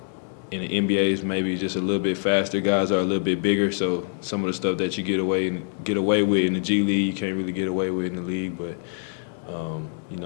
in the NBA is maybe just a little bit faster. Guys are a little bit bigger, so some of the stuff that you get away with in the G League, you can't really get away with in the league. But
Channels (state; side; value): silent; right; digital silence